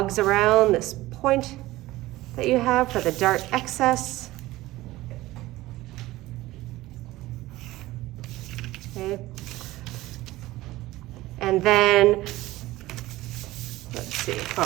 around this point that you have for the dart excess. Okay. And then, let's see,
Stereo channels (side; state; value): left; quieter; 17.6 dB